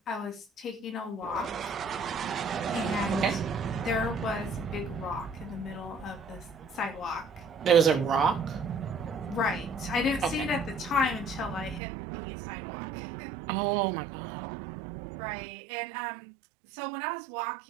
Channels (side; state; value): left; drops out; at 11.8 s